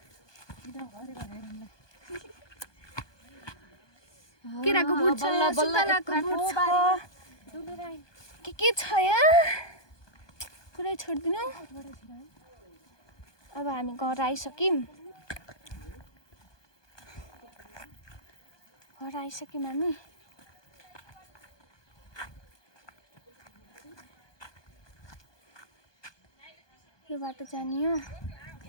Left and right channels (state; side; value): late; right; 1.2 ms